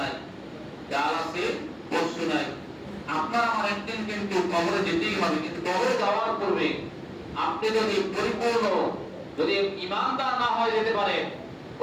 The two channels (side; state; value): both; identical; correlation 1.00